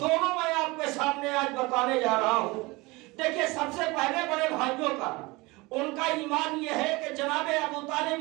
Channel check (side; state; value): left; quieter; 23.4 dB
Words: میں آپ کے سامنے آج بتانے جا رہا ہوں۔ دیکھیں سب سے پہلے بڑے بھائیوں کا، ان کا ایمان یہ ہے کہ جناب ابو طالب